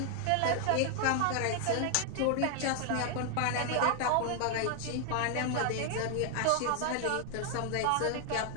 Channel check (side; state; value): both; different; correlation 0.00